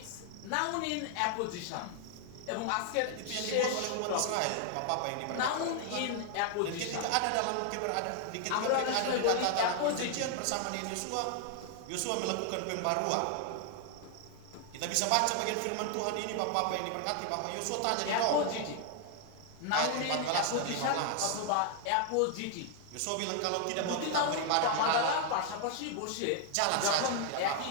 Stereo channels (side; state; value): both; different; correlation 0.00